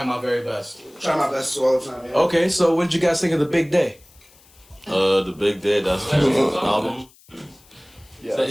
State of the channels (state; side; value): noise; left; hiss, 28 dB below the sound